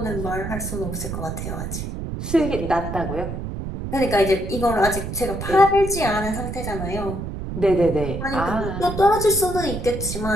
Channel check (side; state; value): right; noise; rumble, 6 dB below the sound